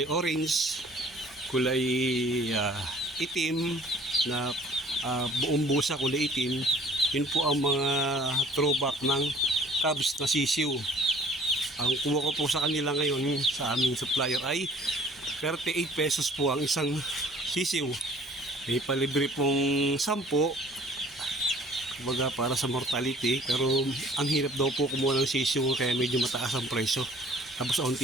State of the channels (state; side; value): normal; both; correlation 0.53